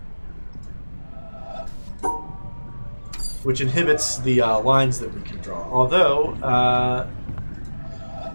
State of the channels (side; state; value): both; inverted; correlation -1.00